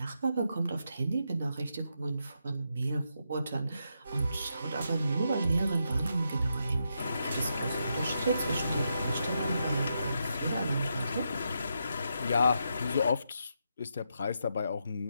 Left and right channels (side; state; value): both; inverted; correlation -0.82